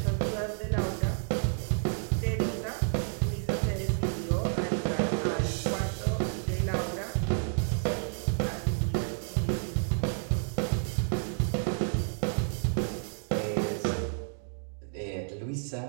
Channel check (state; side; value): silent; left; 58 dB below the other